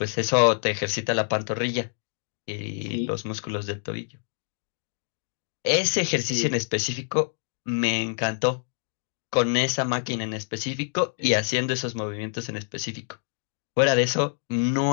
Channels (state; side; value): silent; right; digital silence